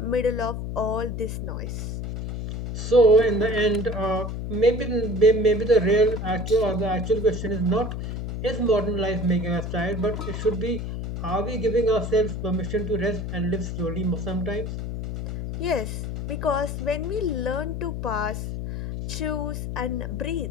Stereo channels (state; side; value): noise; left; hum, 5 dB below the sound